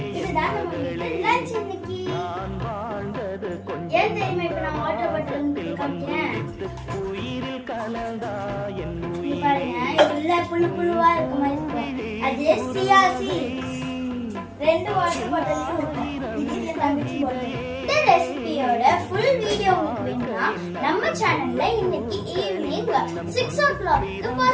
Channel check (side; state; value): both; identical; correlation 1.00